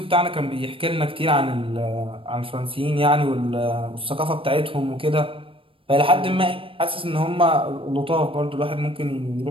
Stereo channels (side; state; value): left; late; 0.26 ms